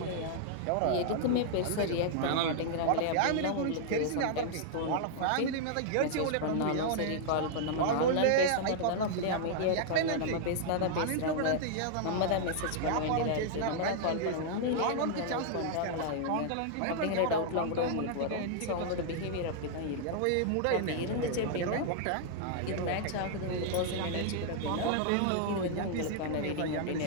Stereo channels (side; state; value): both; different; correlation -0.01